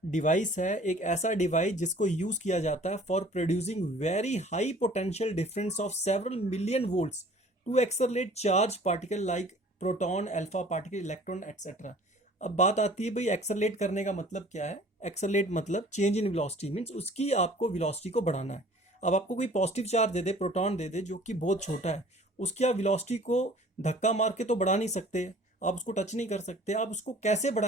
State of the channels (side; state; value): both; normal; correlation 0.50